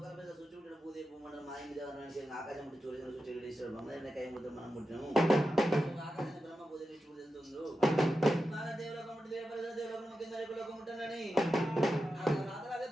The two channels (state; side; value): normal; both; correlation 0.90